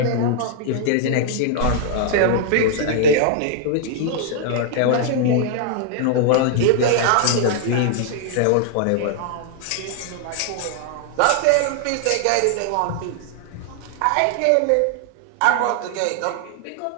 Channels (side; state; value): both; different; correlation -0.01